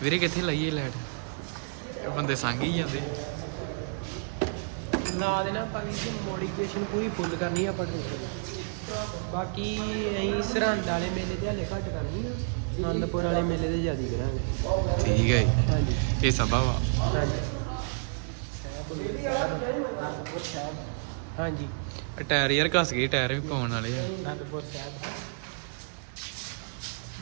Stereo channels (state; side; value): silent; left; digital silence